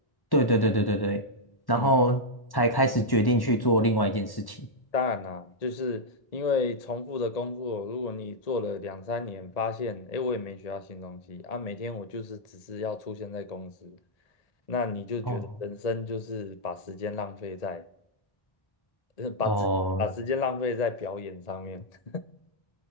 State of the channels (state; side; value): late; right; 1.1 ms